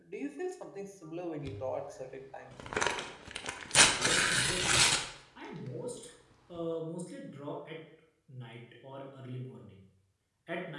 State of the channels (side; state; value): both; identical; correlation 1.00